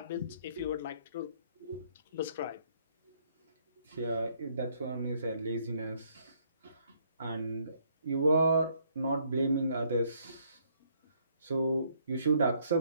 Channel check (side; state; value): both; inverted; correlation -0.67